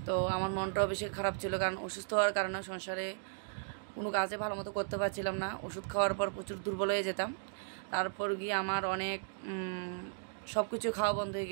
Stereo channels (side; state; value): left; silent; digital silence